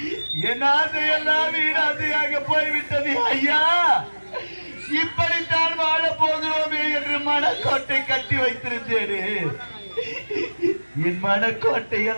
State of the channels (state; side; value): inverted; both; correlation -1.00